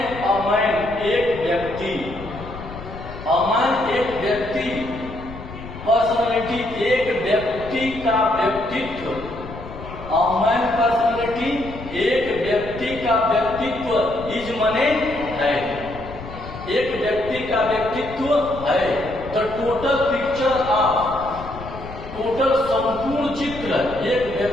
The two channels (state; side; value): noise; left; rumble, 13 dB below the sound